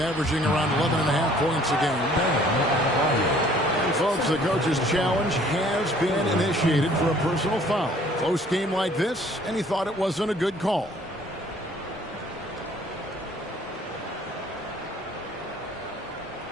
averaging around 11.5 points a game. And folks, the coach's challenge has been initiated for a personal foul. Close game like this, and he thought it wasn't a good call.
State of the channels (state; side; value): normal; both; correlation 0.57